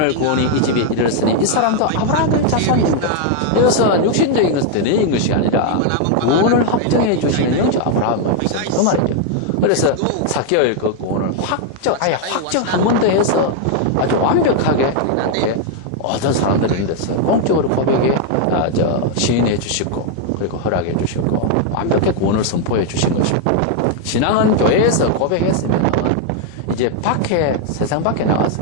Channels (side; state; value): both; different; correlation 0.00